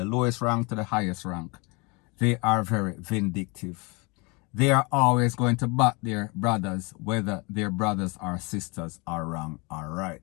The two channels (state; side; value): quieter; right; 29.1 dB